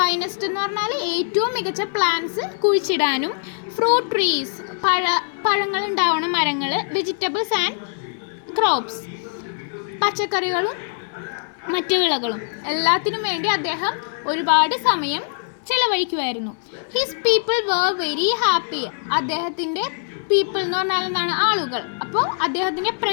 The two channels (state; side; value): silent; right; digital silence